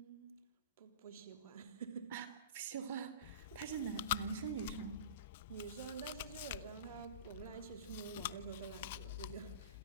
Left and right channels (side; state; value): both; inverted; correlation -0.34